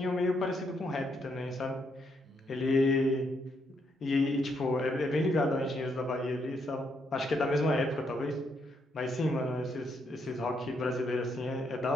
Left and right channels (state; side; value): normal; both; correlation 0.76